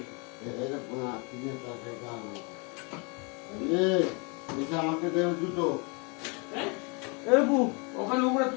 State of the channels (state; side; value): quieter; right; 32.5 dB